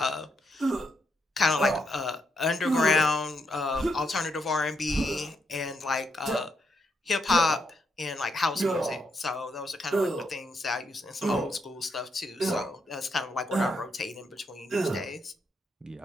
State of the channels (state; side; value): normal; both; correlation 0.79